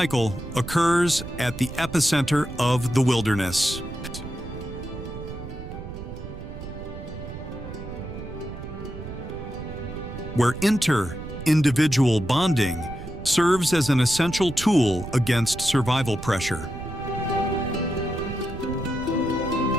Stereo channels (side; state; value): right; noise; rumble, 10 dB below the sound